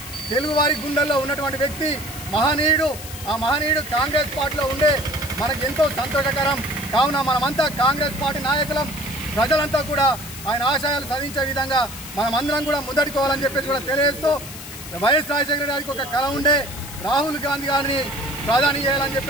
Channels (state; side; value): noise; left; hiss, 12 dB below the sound